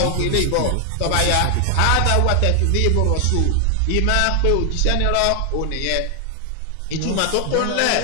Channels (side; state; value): both; different; correlation 0.00